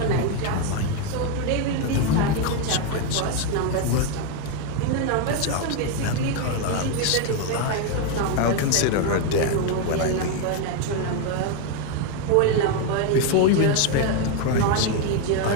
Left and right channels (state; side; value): different; both; correlation 0.02